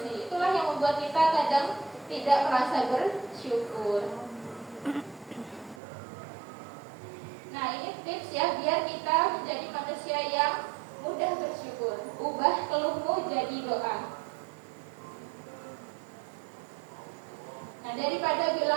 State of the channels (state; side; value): drops out; left; at 5.8 s